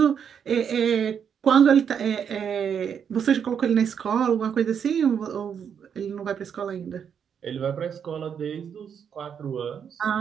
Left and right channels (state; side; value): quieter; left; 7.7 dB